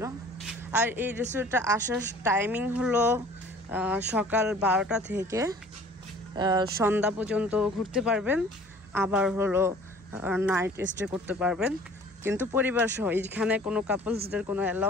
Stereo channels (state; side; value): normal; both; correlation 0.50